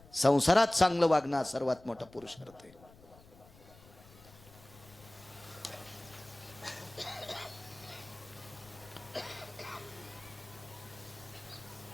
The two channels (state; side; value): noise; left; rumble, 23 dB below the sound